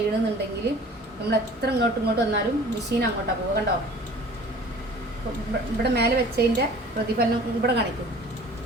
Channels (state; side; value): normal; both; correlation 0.46